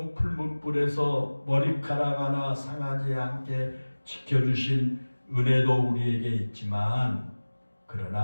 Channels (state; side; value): inverted; both; correlation -1.00